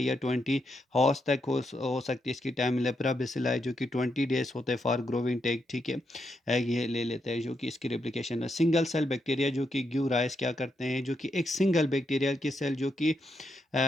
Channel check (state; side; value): normal; both; correlation 0.81